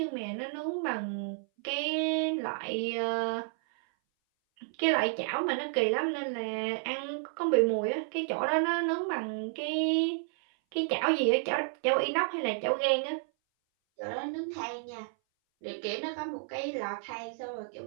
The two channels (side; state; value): left; silent; 57 dB below the other